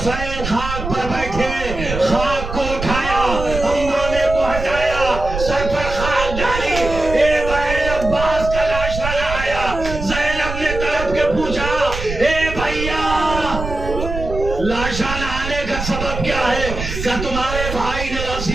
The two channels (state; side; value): noise; right; rumble, 7 dB below the sound